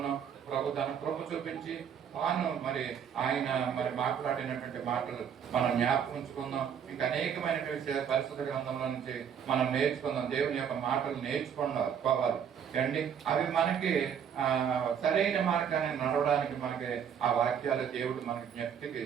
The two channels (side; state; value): left; quieter; 8.0 dB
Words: ప్రభు తన కృప చూపించి తాను మరి ఆయన మరి మాట్లాడినటువంటి మాటలు మనం జ్ఞాపకం ఉంచుకుందాం. ఇంకా అనేకమైనటువంటి పరిశుద్ధ గ్రంథంలో నుంచి మనం నేర్చుకుందాం. దేవుని యొక్క మాటలు నేర్చుకోవాలి అండి. అవి మనకి సరైన మార్గాన్ని నడవడానికి మనకి ఆ వాక్యాలు దేవుడు మనకి